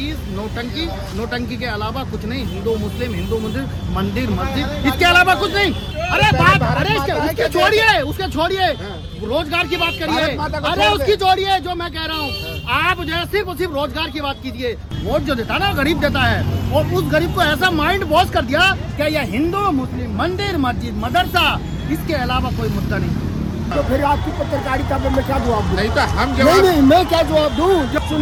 नोटंकी, नोटंकी के अलावा कुछ नहीं। हिंदू मुस्लिम मंदिर मस्जिद, इसके अलावा कुछ नहीं। अरे बात, अरे उसके छोड़िए, उसके छोड़िए, रोजगार की बात करिए। अरे उसकी छोड़िए, जो मैं कह रहा हूँ, आप जो है सिर्फ रोजगार की बात कीजिए। वोट जो देता है ना, गरीब देता है, और उस गरीब को ऐसा माइंड वॉश कर दिया कि यह हिंदू मुस्लिम मंदिर मस्जिद मदरसा, इसके अलावा कोई मुद्दा नहीं। तो फिर आपकी पत्रकारिता पे मैं क्या जवाब दूं? नहीं तो हम नहीं, मैं क्या जवाब दूं? जब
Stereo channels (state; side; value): identical; both; correlation 1.00